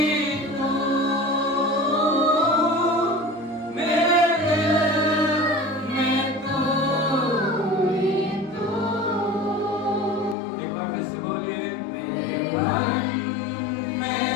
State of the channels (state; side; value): drops out; right; at 10.4 s